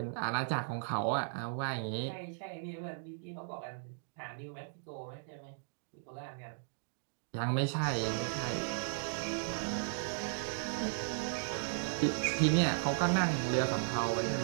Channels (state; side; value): silent; left; digital silence